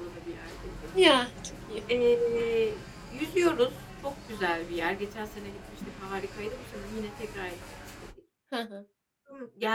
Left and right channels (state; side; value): identical; both; correlation 1.00